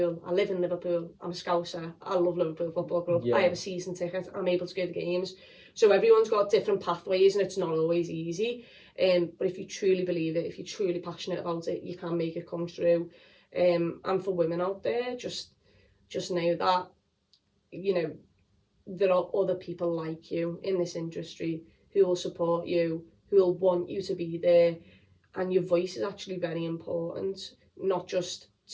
I live in Liverpool. I'm a Scouser. I love Liverpool Football Club. yeah, I have a season ticket. I'm able to go to games. So everyone's got different pathways, and it's not always easy. But if you truly believe it, if you're truly passionate about it, you can make it come true. And for women out there, just know that, there are other people like you in this industry who will support you, who will want you to be there. And your voice is actually very important, not just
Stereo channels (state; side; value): identical; both; correlation 1.00